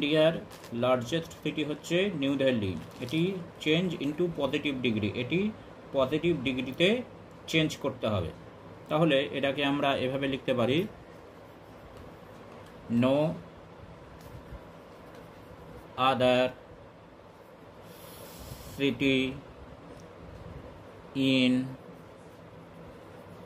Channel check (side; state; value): both; identical; correlation 1.00